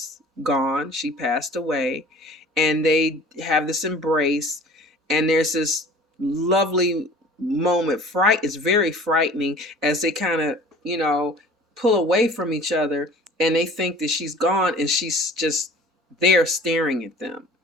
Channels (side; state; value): both; normal; correlation 0.45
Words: gone. She passed away, and they have this embrace, and there's this lovely moment. It's very frightening as they kind of, pull away from each other, and they think that she's gone, and she's just there staring at them.